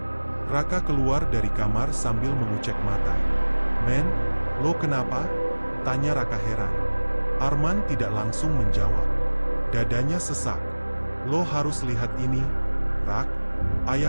Raka keluar dari kamar sambil mengucek mata. "Men, lo kenapa?" tanya Raka heran. Arman tidak langsung menjawab. Dadanya sesak. "Lo harus lihat ini, Rak.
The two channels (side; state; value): both; inverted; correlation -1.00